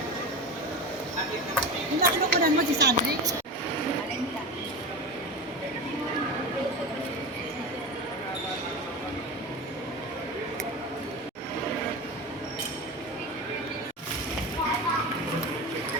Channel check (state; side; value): normal; both; correlation 0.25